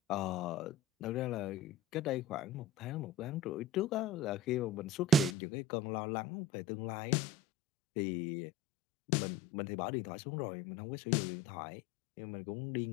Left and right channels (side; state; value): right; drops out; at 5.4 s